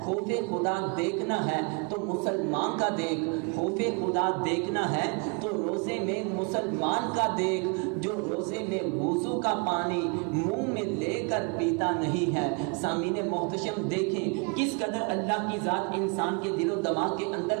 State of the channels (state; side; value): quieter; left; 33.4 dB